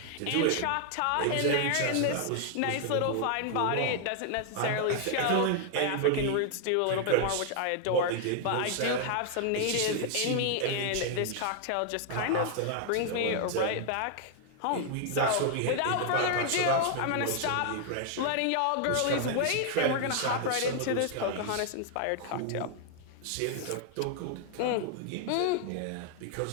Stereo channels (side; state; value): both; different; correlation 0.00